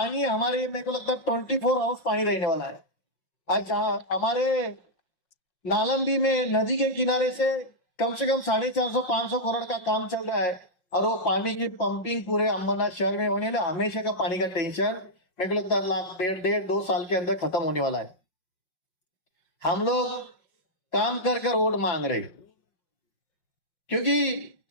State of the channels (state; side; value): late; right; 5.5 ms